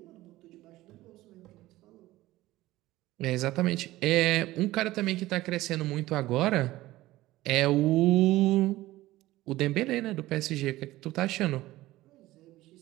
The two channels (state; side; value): quieter; left; 17.1 dB